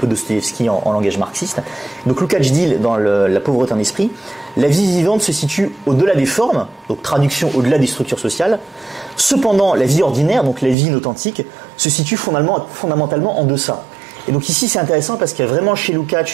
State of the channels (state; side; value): drops out; left; at 10.8 s